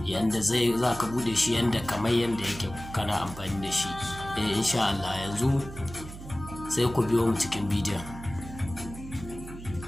yanda za ka buɗe shi yanda kamar yanda yake kana amfani da shi. Insha Allah yanzu sai ku biyo mu cikin bidiyon.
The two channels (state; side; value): noise; right; hum, 13 dB below the sound